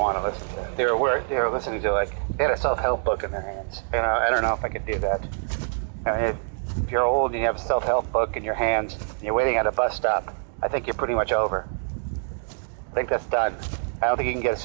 to listen to that. They were listening to, like, they had a self-help book in their hands. You know, I don't know if I could do that. I mean, if you're old and you have a self-help book in your hands and you're waiting at a bus stop, I think you're pretty much over. I think that's done. I don't think you can get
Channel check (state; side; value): silent; left; 62 dB below the other